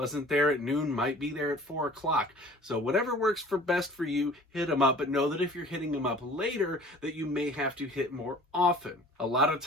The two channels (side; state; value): both; normal; correlation 0.47